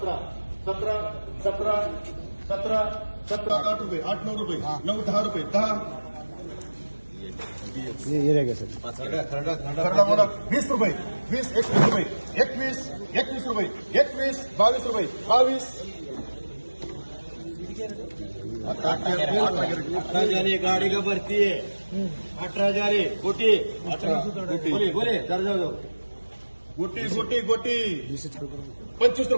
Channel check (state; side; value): inverted; both; correlation -1.00